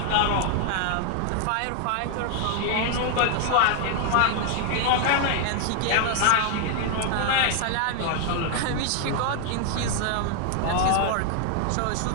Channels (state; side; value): different; both; correlation 0.00